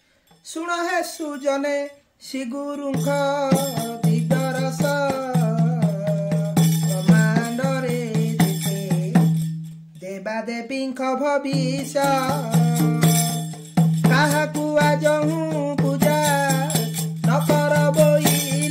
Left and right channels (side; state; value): both; identical; correlation 1.00